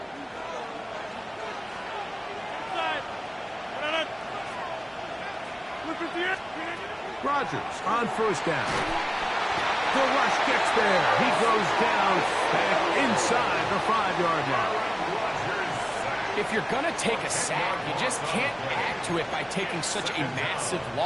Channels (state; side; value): identical; both; correlation 1.00